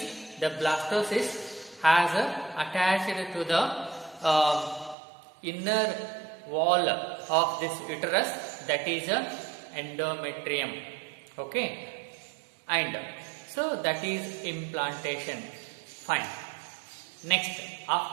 the blastocyst has attached to the inner wall of this uterus, that is endometrium. Okay, and so that is implantation. Fine. Next,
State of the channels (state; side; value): drops out; left; at 5.0 s